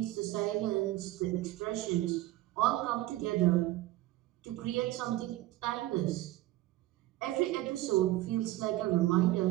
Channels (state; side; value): quieter; left; 16.6 dB